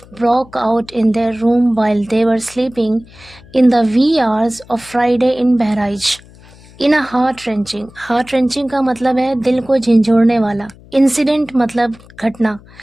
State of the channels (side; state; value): left; noise; hum, 24 dB below the sound